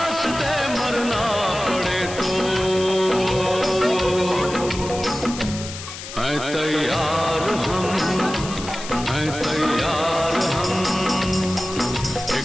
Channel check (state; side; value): noise; left; hiss, 11 dB below the sound